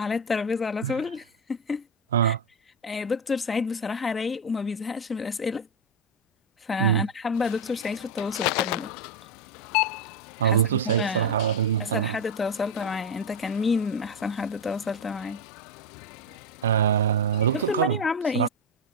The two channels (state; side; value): normal; both; correlation 0.07